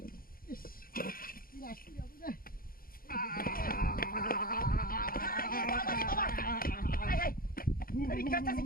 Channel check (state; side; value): late; right; 0.42 ms